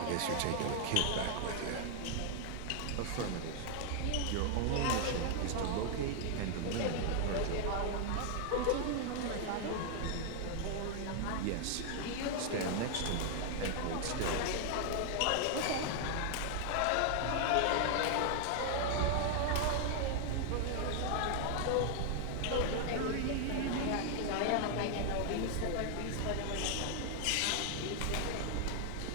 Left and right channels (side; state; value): both; different; correlation 0.00